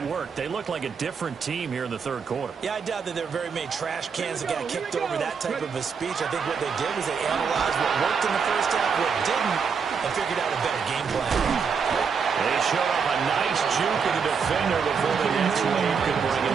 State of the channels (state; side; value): quieter; left; 6.0 dB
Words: worked. They looked like a different team here in the 3rd quarter. Yeah, I doubt that there were very many trash cans that got kicked over that type of a speech. I think what they did was they analyzed what worked in the first half, what didn't, and figured out a better game plan. They showed up a nice juke of the defender before the next wave could bring him